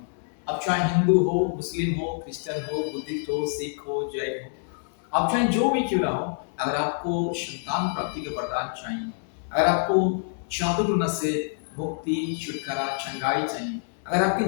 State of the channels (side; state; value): right; silent; 61 dB below the other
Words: अब चाहे हिंदू हो, मुस्लिम हो, क्रिश्चियन हो, बुद्धिस्ट हो, सिख हो, जैन हो, आप चाहे जो भी क्यों ना हो, अगर आपको संतान प्राप्ति का वरदान चाहिए, अगर आपको जादू टोना से मुक्ति, छुटकारा, चंगाई चाहिए, अगर